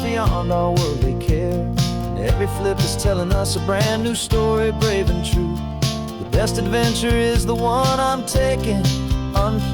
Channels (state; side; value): identical; both; correlation 1.00